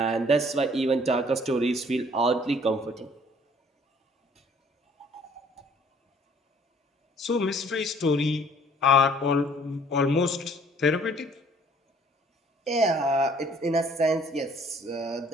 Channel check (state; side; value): normal; both; correlation 0.58